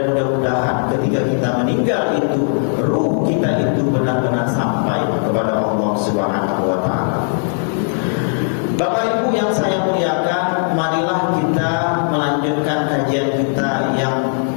mudah-mudahan ketika kita meninggal itu, ruh kita itu benar-benar sampai kepada Allah Subhanahu wa Ta'ala. Bapak Ibu yang saya muliakan, marilah kita melanjutkan kajian kita yang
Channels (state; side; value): silent; right; digital silence